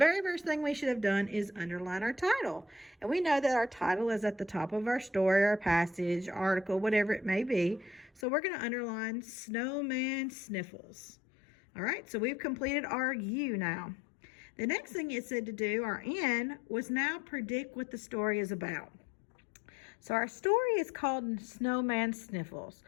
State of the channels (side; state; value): right; drops out; at 8.2 s